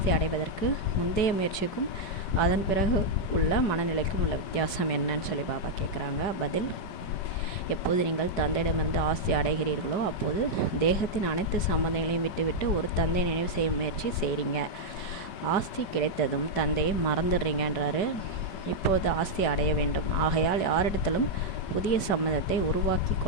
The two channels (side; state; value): right; late; 5.2 ms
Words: அடைவதற்கு முந்தைய முயற்சிக்கும் அதன் பிறகு உள்ள மனநிலைக்கும் உள்ள வித்தியாசம் என்னன்னு சொல்லி பாபா கேட்குறாங்க. பதில்: எப்போது நீங்கள் தந்தையிடமிருந்து ஆஸ்தி அடைகிறீர்களோ அப்போது தேகத்தின் அனைத்து சம்பந்தங்களையும் விட்டுவிட்டு ஒரு தந்தை நினைவு செய்யும் முயற்சி செய்கிறீங்க. ஆஸ்தி கிடைத்ததும் தந்தையை மறந்துடுறீங்கன்றாரு. இப்போது ஆஸ்தி அடைய வேண்டும், ஆகையால் யாரிடத்திலும் புதிய சம்பந்தத்தை உருவாக்கி